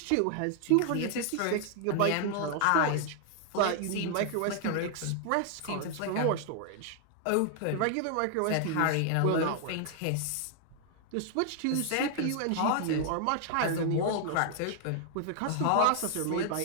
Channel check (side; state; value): both; different; correlation 0.00